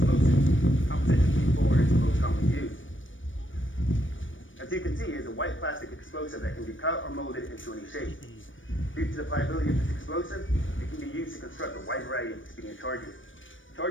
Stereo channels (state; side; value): late; right; 0.56 ms